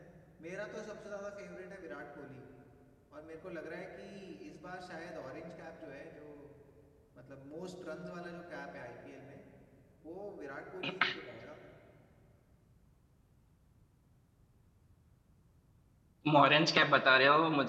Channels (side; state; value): both; identical; correlation 1.00